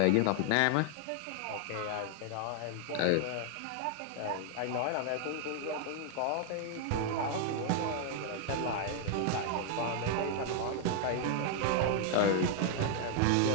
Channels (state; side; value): different; both; correlation 0.00